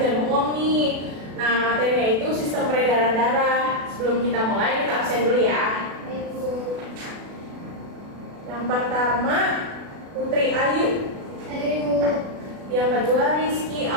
bohong nih. Nah, materinya itu sistem peredaran darah. Sebelum kita mulai, kita absen dulu ya. Baik, Bu. Yang pertama, Putri Ayu. Hadir, Ibu. Yang kedua, Rizky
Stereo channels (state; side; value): late; left; 36 ms